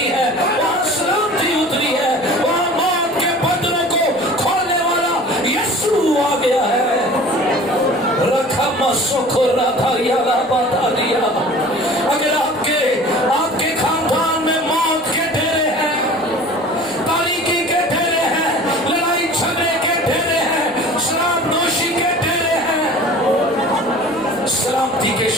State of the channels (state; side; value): noise; right; rumble, 27 dB below the sound